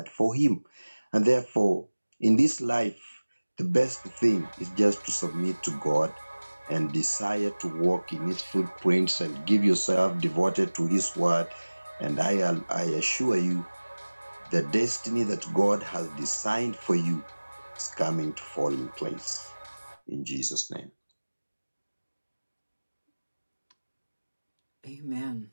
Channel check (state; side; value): inverted; both; correlation -1.00